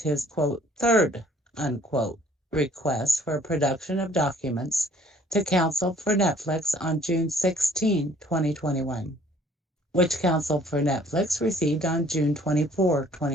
quote, third, unquote, request for production of documents to counsel for NetFlix on June 16, 2021, which counsel for NetFlix received on June 24,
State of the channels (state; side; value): normal; both; correlation 0.57